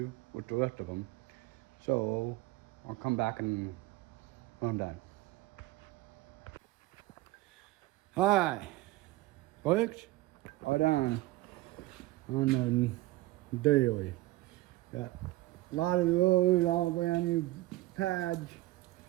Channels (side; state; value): left; quieter; 18.4 dB